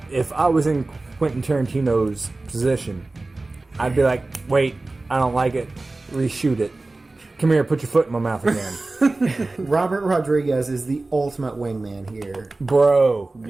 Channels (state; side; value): quieter; left; 3.2 dB